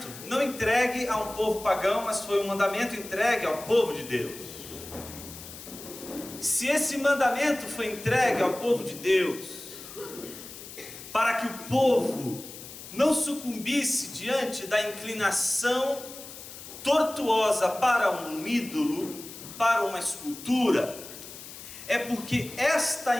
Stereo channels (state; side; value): noise; left; hiss, 14 dB below the sound